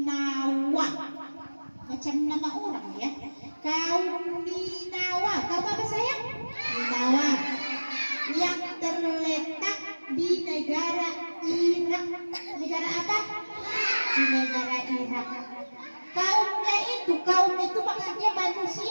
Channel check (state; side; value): inverted; both; correlation -1.00